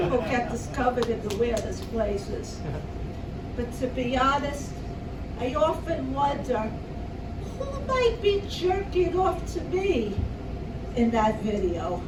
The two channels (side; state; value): both; identical; correlation 1.00